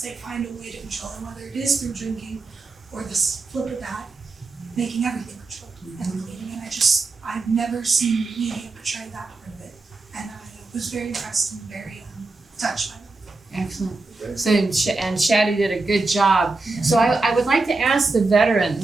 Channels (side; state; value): left; quieter; 3.5 dB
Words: find a way to control it, whether it is through drinking or the flip of that, making everything controlled and cleaning. And I've never seen media portray that part of it. And I was very impressed and very touched by that. Excellent. So, and Shadi did a good job. So I would like to ask the